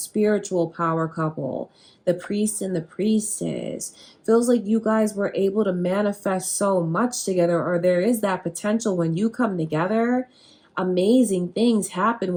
power couple. The priest and the priestess. Feels like you guys were able to manifest so much together, or there is that potential when you come together. Amazing things happen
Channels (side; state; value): both; identical; correlation 1.00